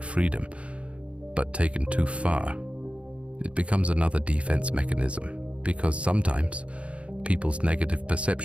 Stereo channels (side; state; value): left; late; 0.062 ms